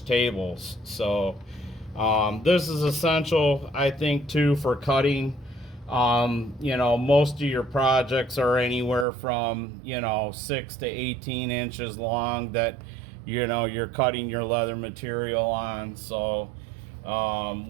tables. So this is essential, I think, too, for cutting. Most of your projects are anywhere from 6 to 18 inches long that you're cutting your leather material on. So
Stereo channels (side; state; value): left; drops out; at 9.1 s